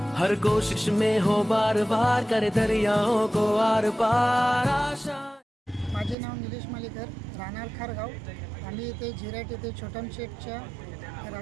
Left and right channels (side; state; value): left; drops out; at 6.2 s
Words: हर कोशिश में हो बार बार, करे दरियाओं को आर पार आशा। माझे नाव निलेश मालेकर, राहणार खारगाव. आम्ही इथे झिराट येथे छोटम शेठच्या